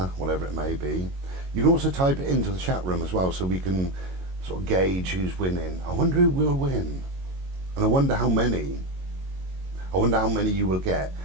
whatever it may be. You can also type it into the chat room as well, so we can sort of gauge who's winning. I wonder who will win, and I wonder how many you will get.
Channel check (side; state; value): left; late; 22 ms